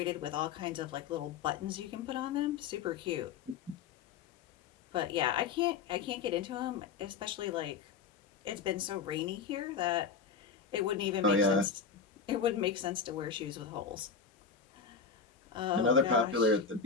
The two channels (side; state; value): right; quieter; 5.9 dB